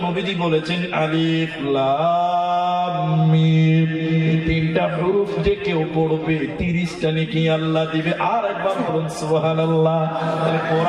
নবীজি বলেছেন আলিফ লাম মিম, তিনটা হরফ যে কেউ পড়বে 30টা নেকি আল্লাহ দিবে। আর একবার বলুন সুবহানাল্লাহ। তাহলে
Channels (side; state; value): both; identical; correlation 1.00